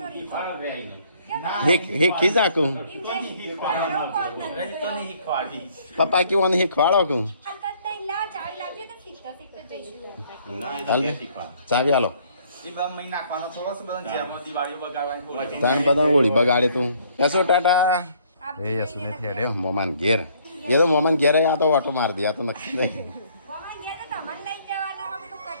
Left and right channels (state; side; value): inverted; both; correlation -0.62